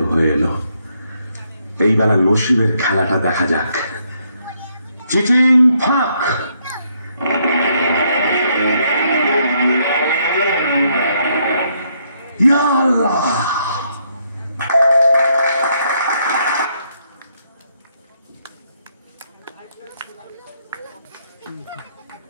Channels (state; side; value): inverted; both; correlation -0.73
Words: হয়ে এলো। এই বেলা নসিবের খেলাটা দেখা যাক। চিটিং ফাঁক। ইয়া আল্লাহ,